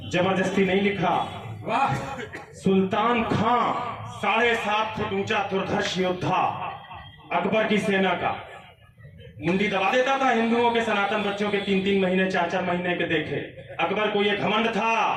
जबरदस्ती नहीं लिखा। वाह, सुल्तान खां 7.5 फुट ऊंचा दुर्धर्ष योद्धा, अकबर की सेना का, मुंडी दबा देता था हिंदुओं के सनातन बच्चों के 3-3 महीने 4-4 महीने के देखे। अकबर को यह घमंड था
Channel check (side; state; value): both; identical; correlation 1.00